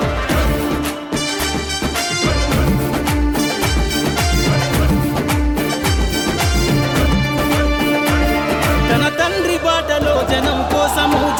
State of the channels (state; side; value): identical; both; correlation 1.00